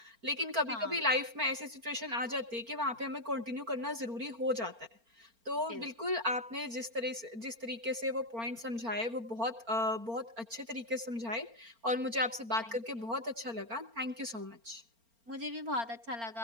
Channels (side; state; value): left; late; 4.4 ms